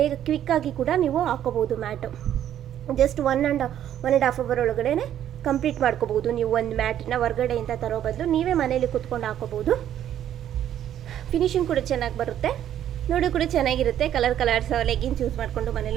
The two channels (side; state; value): left; quieter; 10.8 dB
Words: ಕ್ವಿಕ್ಕಾಗಿ ಕೂಡ ನೀವು ಹಾಕೋಬೋದು mat. Just one and half hour ಒಳಗಡೆ ಕಂಪ್ಲೀಟ್ ಮಾಡ್ಕೋಬೋದು. ನೀವು ಒಂದು ಮ್ಯಾಟನ್ನ ಹೊರಗಡೆಯಿಂದ ತರೋ ಬದಲು ನೀವೇ ಮನೇಲಿ ಕುತ್ಕೊಂಡು ಹಾಕೋಬೋದು. ಫಿನಿಶಿಂಗ್ ಕೂಡ ಚೆನ್ನಾಗಿ ಬರುತ್ತೆ, ನೋಡಿ ಕೂಡ ಚೆನ್ನಾಗಿರುತ್ತೆ. ಕಲರ್ಸ್ ಲೆಗಿನ್ಸ್ ಯೂಸ್ ಮಾಡಿಕೊಂಡು